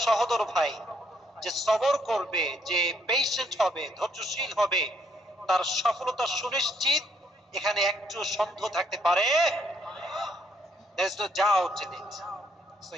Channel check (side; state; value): both; normal; correlation 0.70